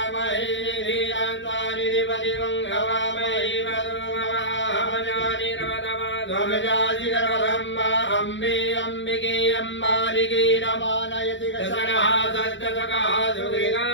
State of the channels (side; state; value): right; late; 0.54 ms